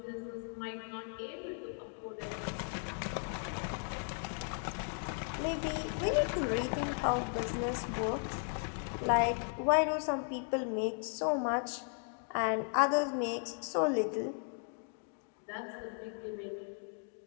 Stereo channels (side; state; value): right; silent; 54 dB below the other